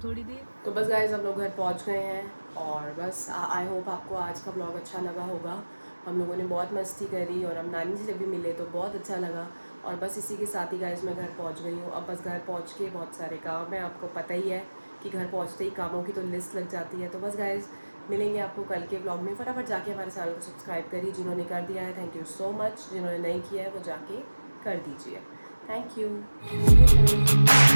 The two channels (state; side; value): inverted; both; correlation -1.00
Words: देर। तो बस गाइज हम लोग घर पहुंच गए हैं और बस आई होप आपको आज का ब्लॉग अच्छा लगा होगा। हम लोगों ने बहुत मस्ती करी और हम नानी से जब भी मिले तो बहुत अच्छा लगा। और बस इसी के साथ ही गाइज मैं घर पहुंच गई हूँ। अब बस घर पहुंच के बहुत सारे काम है, आपको पता ही है कि घर पहुंचते ही कामों की तो लिस्ट लग जाती है। तो बस गाइज मिलेंगे आपको कल के ब्लॉग में। फटाफट जाके हमारे चैनल को सब्सक्राइब करिए, जिन्होंने कर दिया है थैंक यू सो मच, जिन्होंने नहीं किया है वो जाके कर दीजिए। Thank you.